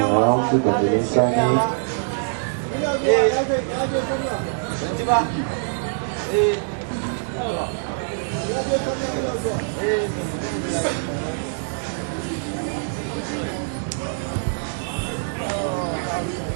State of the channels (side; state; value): left; silent; digital silence